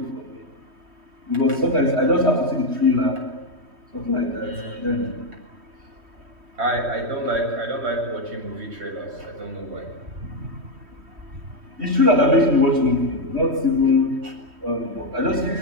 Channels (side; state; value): left; late; 3.1 ms